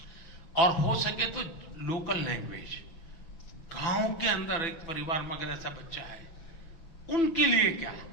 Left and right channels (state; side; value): late; right; 6.0 ms